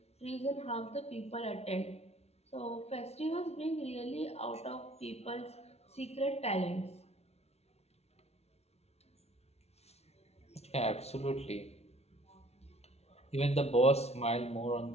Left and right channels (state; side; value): late; right; 0.31 ms